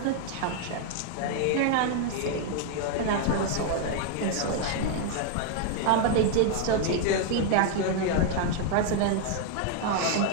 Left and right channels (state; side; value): different; both; correlation 0.00